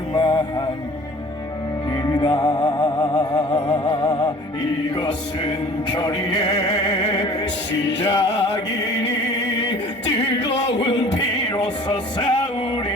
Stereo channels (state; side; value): normal; both; correlation 0.48